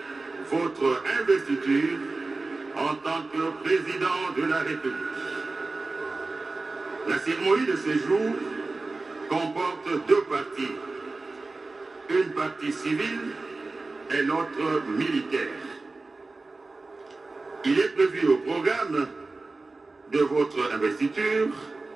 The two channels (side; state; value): left; quieter; 3.5 dB